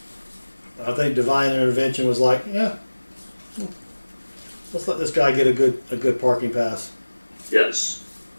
I think Divine Intervention was like, yeah, let's let this guy get a good parking pass. Yes.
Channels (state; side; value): inverted; both; correlation -1.00